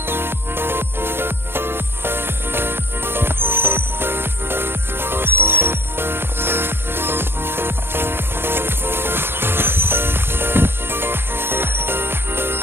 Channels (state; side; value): late; left; 0.11 ms